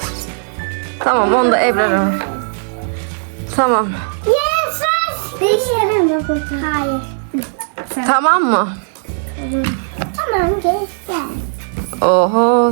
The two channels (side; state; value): left; silent; 63 dB below the other